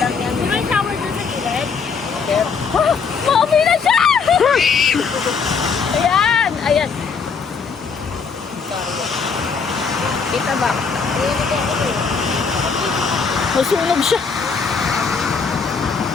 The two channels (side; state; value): right; quieter; 5.5 dB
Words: May shower doon sa gilid. Mami na siya! Ayan! Ayan! Kita ba? Masunog siya.